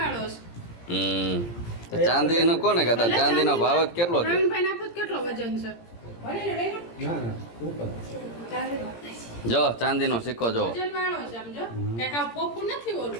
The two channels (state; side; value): late; right; 17 ms